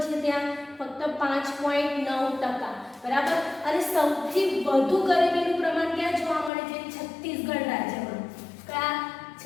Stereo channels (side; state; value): right; drops out; at 6.5 s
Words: છે ત્યાં? ફક્ત 5.9%. બરાબર. અને સૌથી વધુ ગરીબીનું પ્રમાણ ક્યાં જોવા મળે છે? છત્તીસગઢ રાજ્યમાં. કયા?